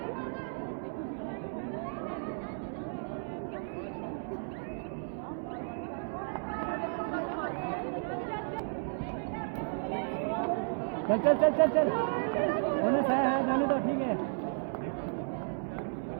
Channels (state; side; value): silent; left; digital silence